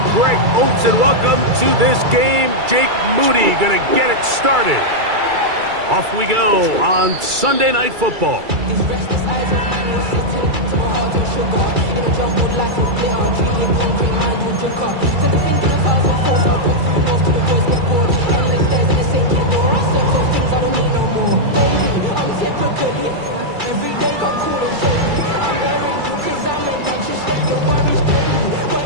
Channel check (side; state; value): left; late; 2.3 ms